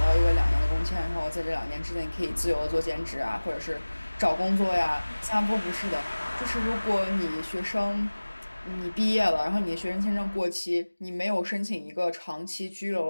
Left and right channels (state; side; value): inverted; both; correlation -1.00